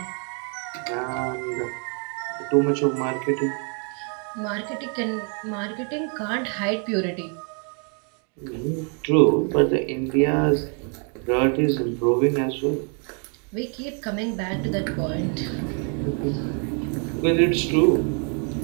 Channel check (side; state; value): left; quieter; 39.3 dB